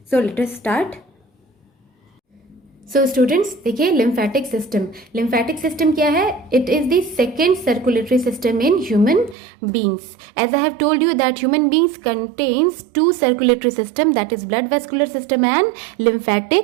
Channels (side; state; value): left; drops out; at 9.3 s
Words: So let us start. So students देखिए lymphatic system क्या है? It is the second circulatory system in human beings. As I have told you that human beings contains two circulatory system, that is blood vascular system and